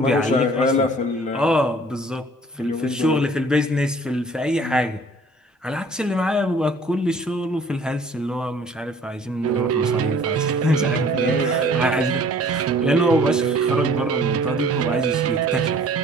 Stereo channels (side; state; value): both; normal; correlation 0.52